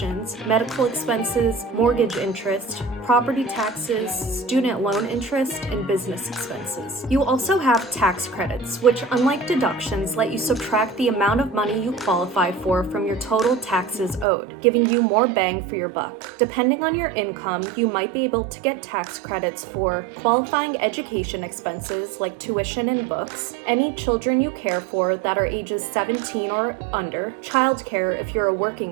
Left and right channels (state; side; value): drops out; left; at 14.2 s